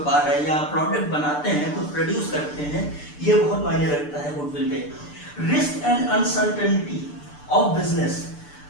है, या प्रोडक्ट बनाते हैं, कुछ प्रोड्यूस करते हैं, ये बहुत मायने रखता है गुडविल पे। Risk and uncertainty of business,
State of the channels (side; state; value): right; late; 6.8 ms